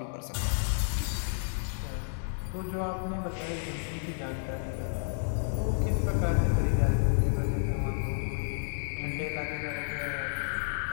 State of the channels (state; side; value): silent; right; digital silence